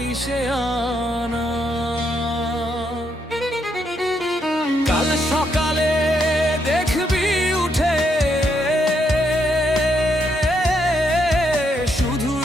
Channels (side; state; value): both; normal; correlation 0.77